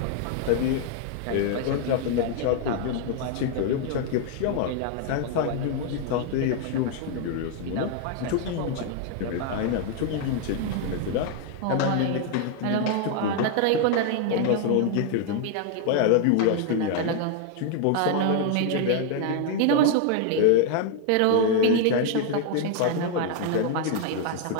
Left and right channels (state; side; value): different; both; correlation 0.00